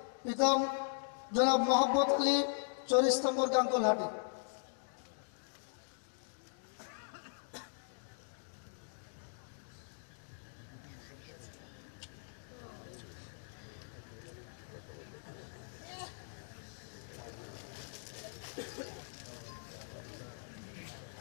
পিতা জনাব মোহাম্মদ আলী, 40 নম্বর গাঙ্গুলহাটি।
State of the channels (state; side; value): silent; right; digital silence